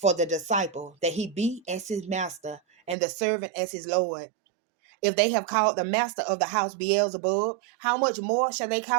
the disciple that he be as his master, and the servant as his Lord. If they have called the master of the house Beelzebub, how much more shall they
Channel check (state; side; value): drops out; left; at 3.0 s